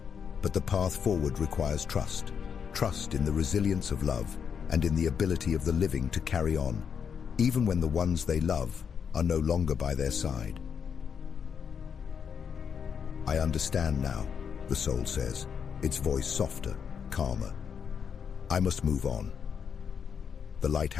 but the path forward requires trust. Trust in the resilience of love and in the ability of the living to carry on, even when the ones they love are no longer by their side. I understand now, the soul says, its voice softer, calmer. I must move on. The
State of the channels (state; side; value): quieter; right; 7.0 dB